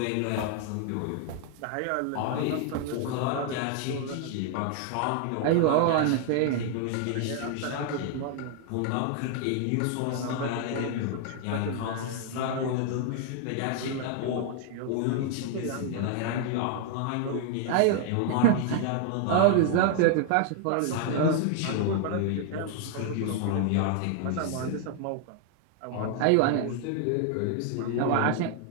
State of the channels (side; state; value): both; different; correlation 0.00